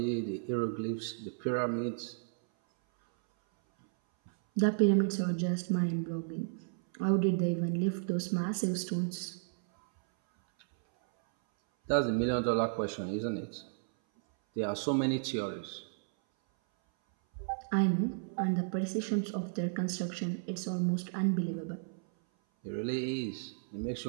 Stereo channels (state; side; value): silent; left; 56 dB below the other